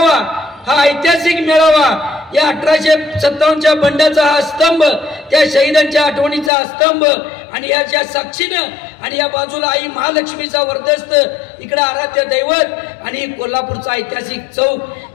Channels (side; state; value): right; drops out; at 6.5 s